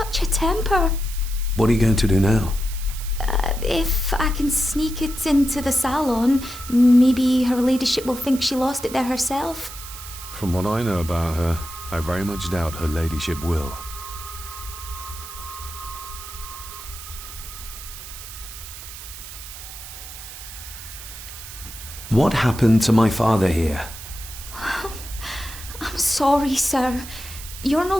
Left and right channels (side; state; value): right; noise; hiss, 12 dB below the sound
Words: a temper. What are you going to do now? If I can sneak it into the salon, maybe her ladyship will think she lost it there herself. From what I know about her, I very much doubt her ladyship will. What happened to my father here? I'm sorry, sir. You're no